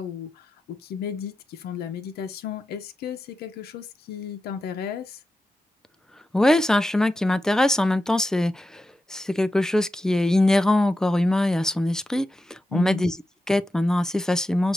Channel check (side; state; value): both; normal; correlation 0.90